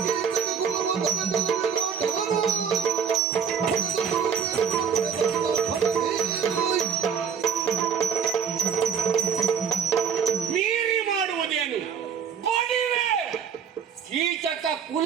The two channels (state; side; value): quieter; left; 7.2 dB